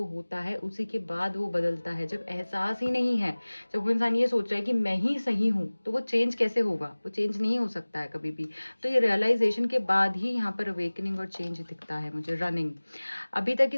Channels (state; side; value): inverted; both; correlation -1.00